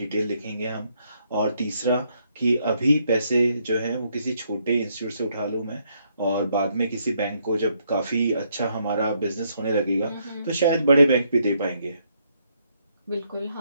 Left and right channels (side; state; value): both; inverted; correlation -0.73